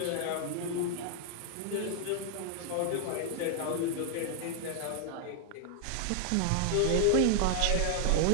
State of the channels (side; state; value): both; different; correlation 0.00